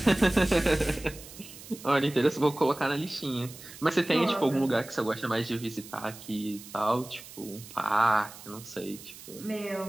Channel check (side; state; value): right; noise; hiss, 16 dB below the sound